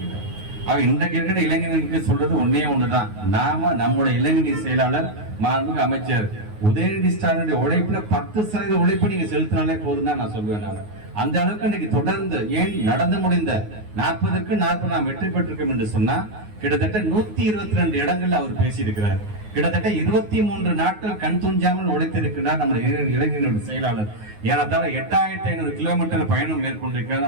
இன்றைக்கு இருக்கிற இளைஞர்களுக்கு சொல்றது ஒண்ணுதான். நாம நம்முடைய இளைஞரணி செயலாளர் மாண்புமிகு அமைச்சர் உதயநிதி ஸ்டாலினுடைய உழைப்புல 10% உழைப்பு நீங்க செலுத்தினாலே போதும் தான் நான் சொல்லுவேன். நான் அந்த அளவுக்கு இன்னைக்கு தொடர்ந்து ஏன் நடந்து முடிந்த 40க்கு 40 நாம் வெற்றி பெற்றிருக்கோம் என்று சொன்னா கிட்டத்தட்ட 122 இடங்கள்ல அவர் பேசியிருக்கிறார். கிட்டத்தட்ட 23 நாட்கள் கண் துஞ்சாமல் உழைத்திருக்கிறார் நம்முடைய இளைஞர்களுடைய செயலாளர். ஏறத்தாழ 8500 கிலோமீட்டர் பயணம் மேற்கொண்டிருக்கிறார்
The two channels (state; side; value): late; left; 9.5 ms